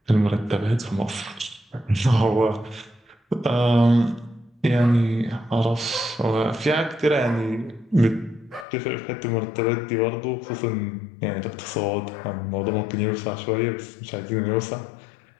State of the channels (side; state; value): right; drops out; at 8.7 s